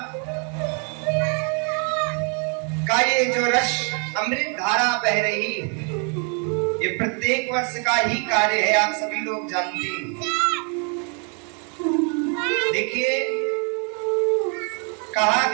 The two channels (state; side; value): quieter; left; 38.5 dB